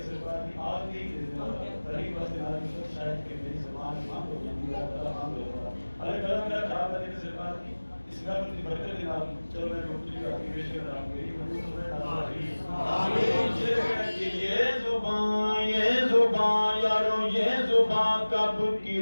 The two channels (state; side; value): inverted; both; correlation -1.00